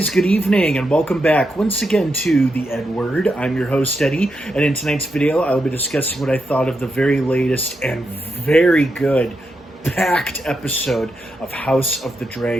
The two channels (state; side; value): normal; both; correlation 0.84